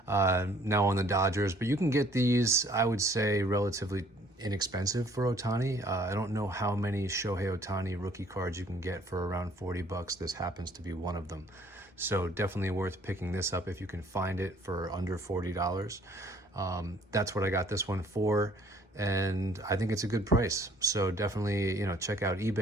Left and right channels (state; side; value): normal; both; correlation 0.58